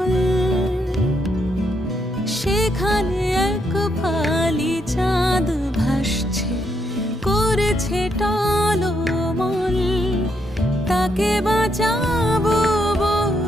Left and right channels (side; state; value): both; normal; correlation 0.77